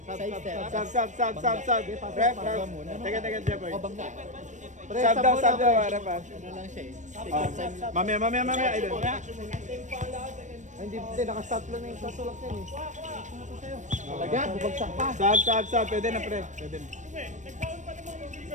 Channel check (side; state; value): left; late; 0.35 ms